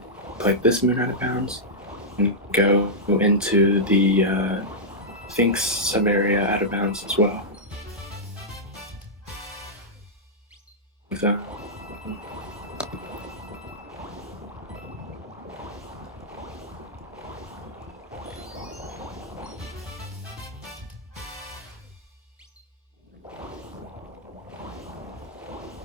Like this moon out of bounds, and go into the Sphinx sub-area out of bounds as well. So,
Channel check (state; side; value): normal; both; correlation -0.07